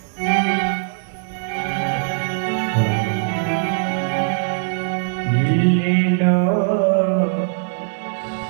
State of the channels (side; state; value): left; silent; digital silence